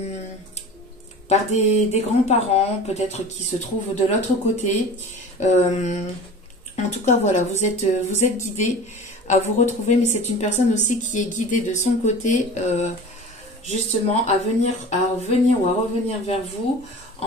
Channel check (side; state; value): both; normal; correlation 0.38